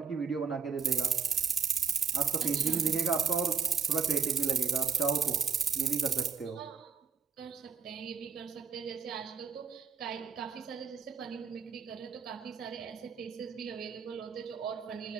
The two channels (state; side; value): quieter; left; 5.8 dB